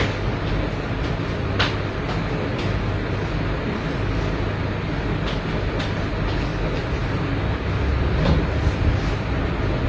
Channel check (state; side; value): identical; both; correlation 1.00